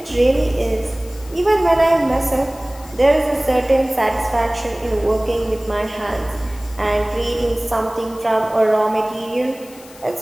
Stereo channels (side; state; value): left; noise; hiss, 22 dB below the sound